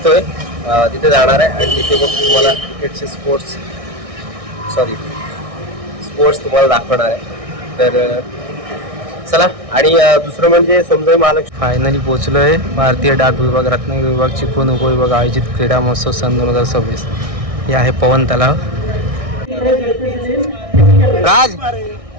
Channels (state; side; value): late; left; 1.6 ms